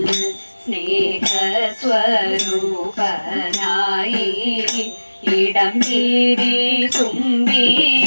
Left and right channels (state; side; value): inverted; both; correlation -1.00